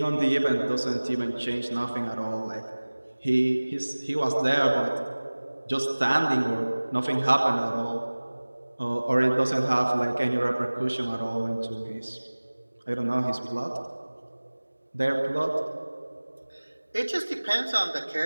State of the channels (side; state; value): both; inverted; correlation -1.00